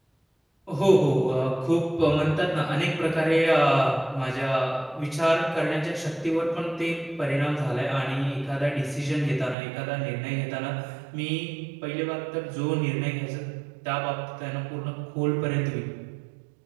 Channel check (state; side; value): drops out; left; at 9.6 s